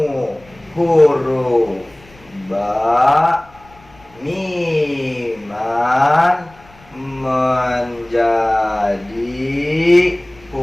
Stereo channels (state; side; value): noise; left; rumble, 27 dB below the sound